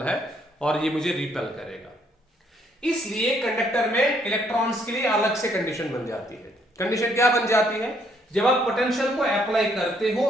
है और ये मुझे रिपेल करेगा। इसलिए कंडक्टर में इलेक्ट्रॉन्स के लिए अलग से कंडीशन बन जाती है। कंडीशन क्या बन जाती है? जब आप पोटेंशियल को अप्लाई करते हो,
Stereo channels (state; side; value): normal; both; correlation 0.69